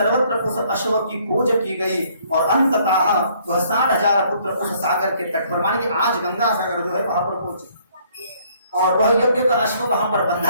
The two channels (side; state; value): both; inverted; correlation -0.63